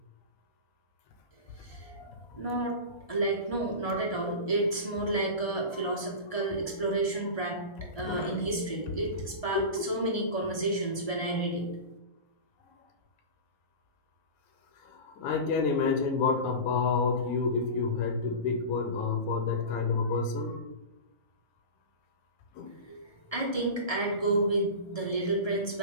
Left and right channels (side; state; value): right; late; 1.3 ms